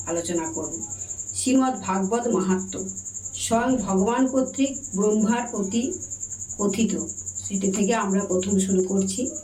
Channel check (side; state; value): both; identical; correlation 1.00